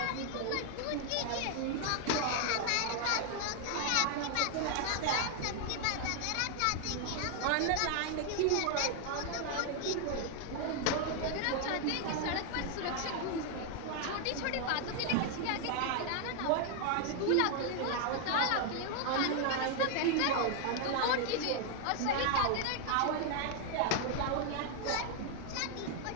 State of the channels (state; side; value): different; both; correlation 0.00